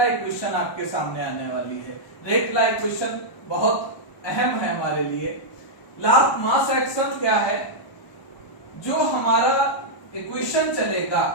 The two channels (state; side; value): late; right; 1.0 ms